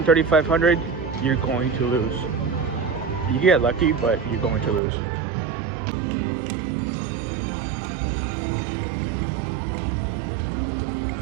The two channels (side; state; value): left; drops out; at 4.8 s